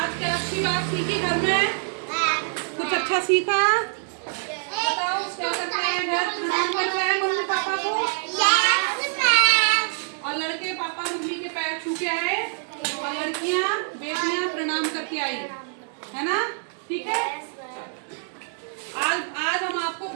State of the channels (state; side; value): silent; left; 62 dB below the other